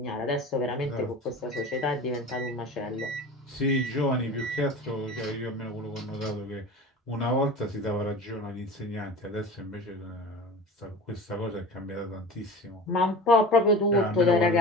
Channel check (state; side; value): normal; both; correlation 0.35